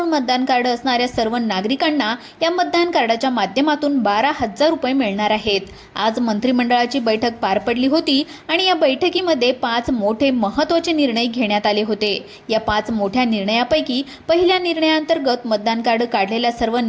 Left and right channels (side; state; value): both; identical; correlation 1.00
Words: मतदान कार्ड असणाऱ्या सर्व नागरिकांना या मतदान कार्डाच्या माध्यमातून 12,000 रुपये मिळणार आहेत। आज मंत्रिमंडळाची बैठक पार पडली होती आणि या बैठकीमध्ये 5 मोठे महत्त्वाचे निर्णय घेण्यात आले होते। या 5 मोठ्या निर्णयापैकी पहिल्या निर्णयाअंतर्गत मतदान कार्ड काढलेल्या सर्व